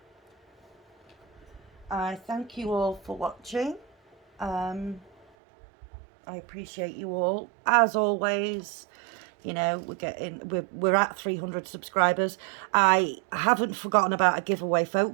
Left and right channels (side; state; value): left; drops out; at 5.2 s